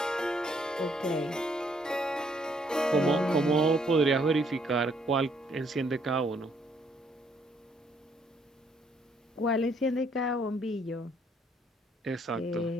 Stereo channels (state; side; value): normal; both; correlation 0.68